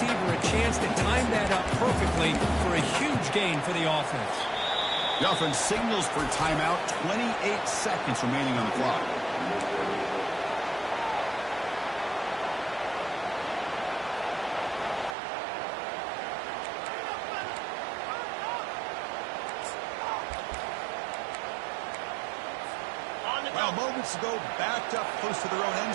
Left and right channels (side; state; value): left; drops out; at 15.2 s